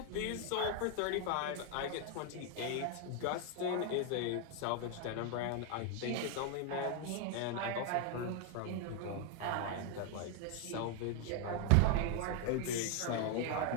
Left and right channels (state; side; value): different; both; correlation 0.00